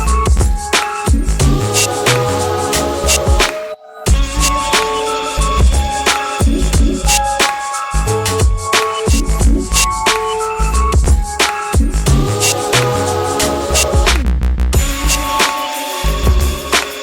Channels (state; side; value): identical; both; correlation 1.00